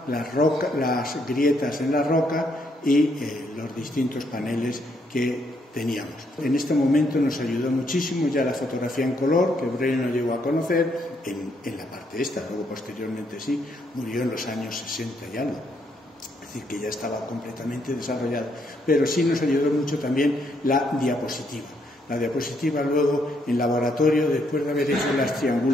las grietas en la roca y los distintos paneles que teníamos. En este momento nos ayudó muchísimo ya la fotografía en color, que Breuil no llegó a conocer en la parte esta, luego posteriormente sí, murió en los años 60 y algo, es decir, que ya estaba completamente desarrollado, pero sí nos ayudó mucho también la diapositiva. La diapositiva luego en laboratorio, después de haber hecho las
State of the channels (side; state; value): both; normal; correlation 0.73